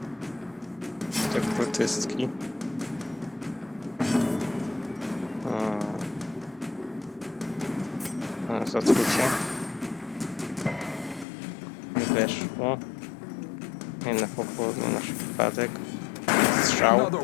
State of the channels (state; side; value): drops out; right; at 11.2 s